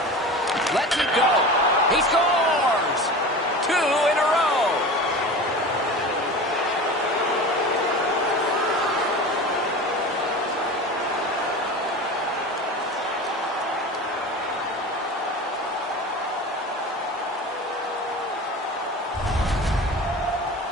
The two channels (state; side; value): normal; both; correlation 0.33